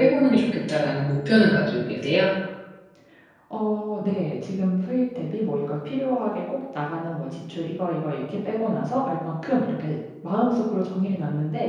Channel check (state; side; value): identical; both; correlation 1.00